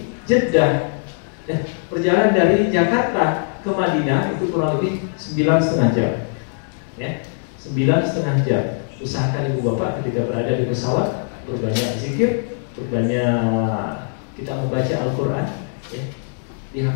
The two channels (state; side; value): silent; right; 65 dB below the other